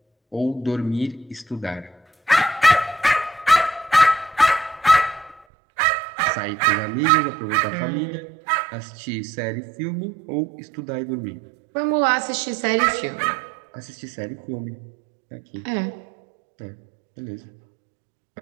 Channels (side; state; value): left; drops out; at 5.5 s